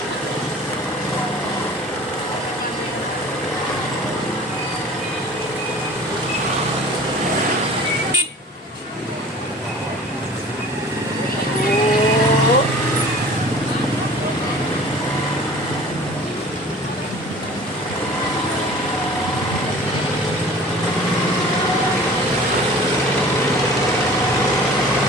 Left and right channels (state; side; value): normal; both; correlation 0.45